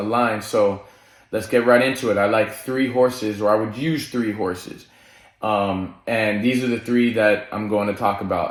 line, so let's get right into it. I like 3 horses, or I would use 3 horses. And these are the 3 that I'm going to talk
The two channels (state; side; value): identical; both; correlation 1.00